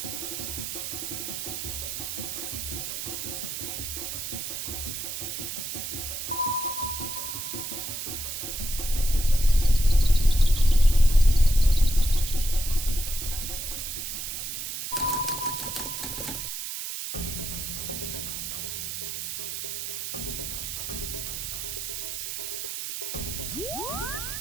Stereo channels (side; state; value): right; noise; hiss, 5 dB below the sound